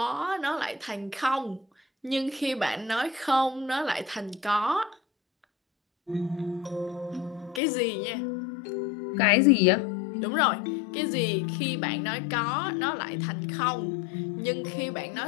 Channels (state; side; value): drops out; right; at 7.6 s